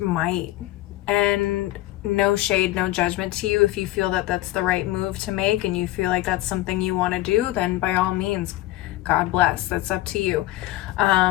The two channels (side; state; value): right; quieter; 16.9 dB